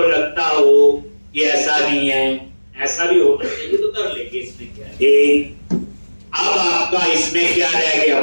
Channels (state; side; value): inverted; both; correlation -1.00